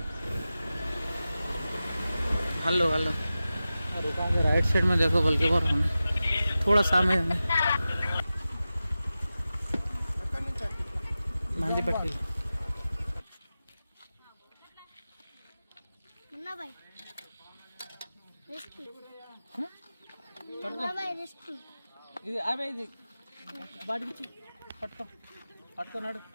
हेलो राइट साइड में देखो बल्कि और थोड़ा सामने मंदी पट्टी मुन्ना भाई रेस्क्यू ఇది అవే ఇది వాడికి పట్టుకున్నాడు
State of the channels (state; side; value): inverted; both; correlation -0.94